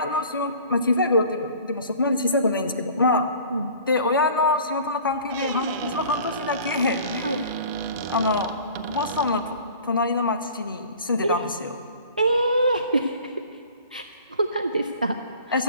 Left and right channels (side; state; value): both; inverted; correlation -0.46